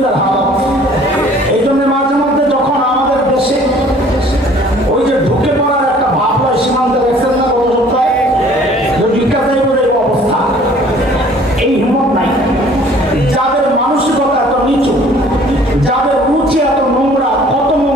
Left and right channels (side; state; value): both; normal; correlation 0.54